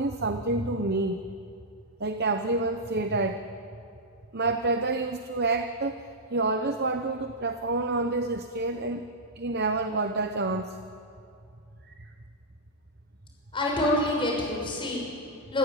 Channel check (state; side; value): normal; both; correlation -0.06